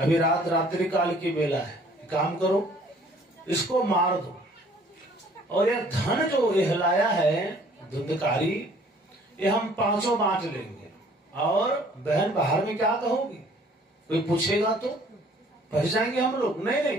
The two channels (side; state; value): both; normal; correlation 0.56